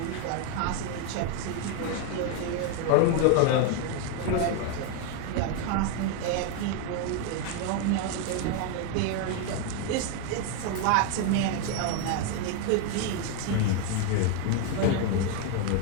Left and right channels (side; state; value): both; different; correlation 0.01